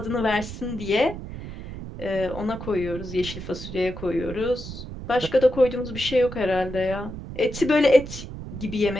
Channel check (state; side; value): noise; right; rumble, 10 dB below the sound